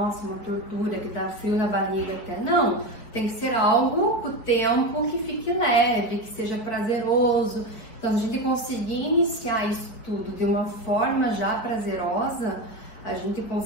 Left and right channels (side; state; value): right; late; 4.6 ms